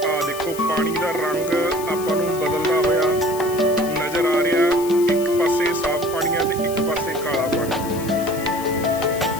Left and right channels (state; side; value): noise; left; hiss, 13 dB below the sound